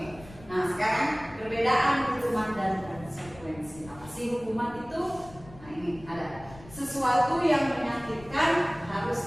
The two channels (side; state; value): left; noise; rumble, 20 dB below the sound